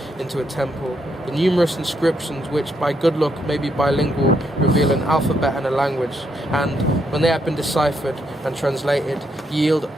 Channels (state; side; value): normal; both; correlation 0.77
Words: into a temple. The numerous inscriptions, which by good luck may be bilingual, reveal an alphabet and a language, and, when they have been deciphered and translated, yield